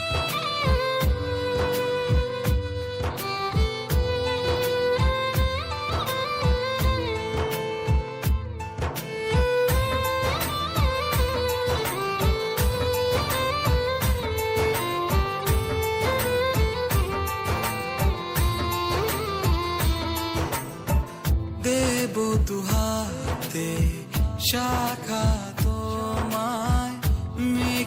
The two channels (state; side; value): identical; both; correlation 1.00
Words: দেব দুহাতে শাখা তোমায়